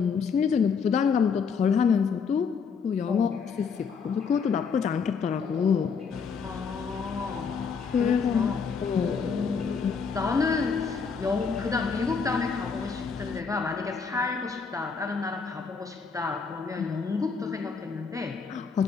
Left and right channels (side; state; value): right; quieter; 5.7 dB